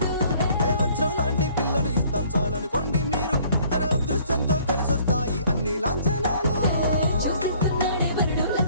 వజ్రం లాంటి పిల్లను ఇస్తాం చాలనుకోండి మీరు తన అదృష్టంతో కలిసొస్తాయి అన్ని లాంఛనాలు చూసిస్తున్నాడే వరుడు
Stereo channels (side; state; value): both; inverted; correlation -0.58